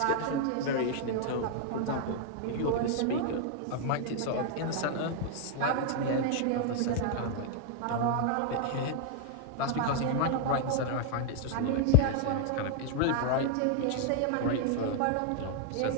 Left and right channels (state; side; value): different; both; correlation 0.00